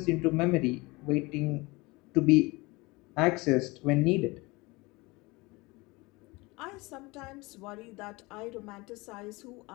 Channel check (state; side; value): quieter; right; 23.9 dB